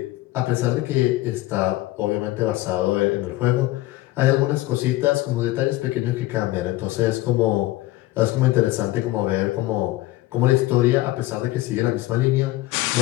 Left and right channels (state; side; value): quieter; right; 17.6 dB